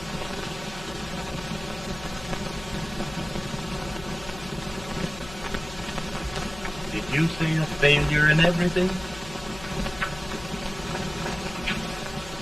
Did you say a failure in everything?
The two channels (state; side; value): noise; left; hum, 15 dB below the sound